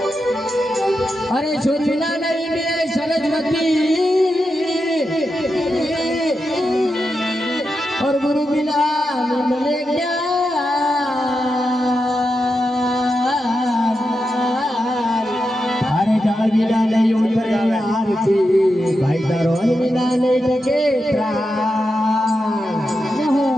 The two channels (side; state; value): both; normal; correlation 0.88